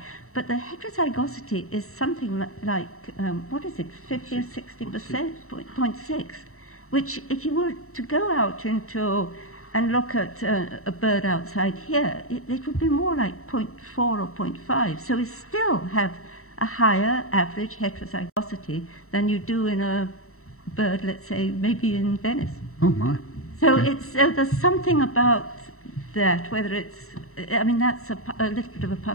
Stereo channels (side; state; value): right; late; 0.63 ms